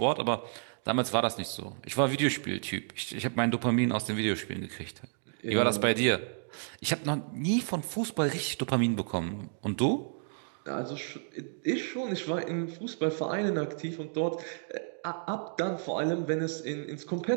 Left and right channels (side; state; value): left; silent; digital silence